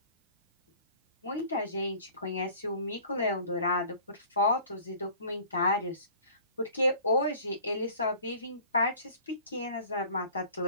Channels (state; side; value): inverted; both; correlation -0.48